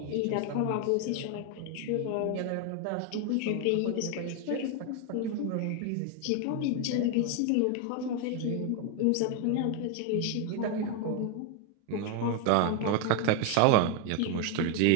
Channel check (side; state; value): both; different; correlation 0.01